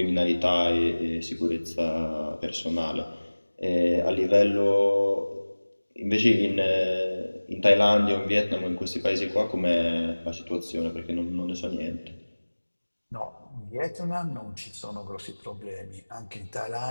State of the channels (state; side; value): inverted; both; correlation -1.00